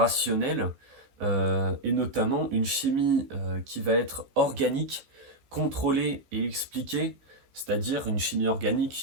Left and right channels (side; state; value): left; late; 14 ms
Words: et notamment une chimie qui va être organique, contrôlée et expliquée, c'est-à-dire une chimie